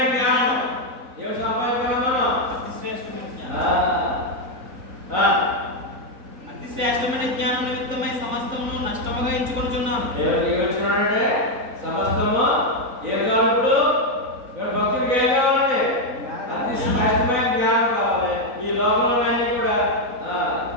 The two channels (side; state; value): left; late; 3.9 ms